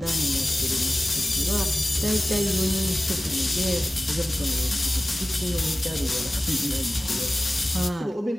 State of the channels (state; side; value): normal; both; correlation 0.97